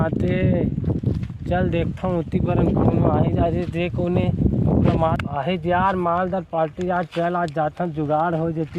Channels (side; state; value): both; identical; correlation 1.00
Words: चल देखता हूँ उती पर कोनो आए जा रे देख कोने आहे यार मालदार पार्टी आज चल आज जाता जुगाड़ हो